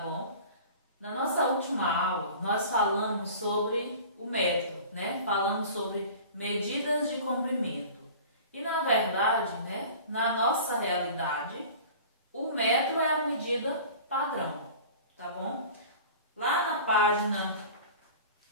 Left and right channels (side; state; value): both; inverted; correlation -0.41